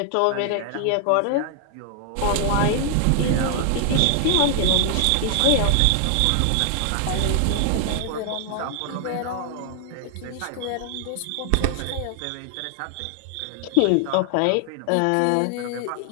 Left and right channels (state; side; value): different; both; correlation 0.00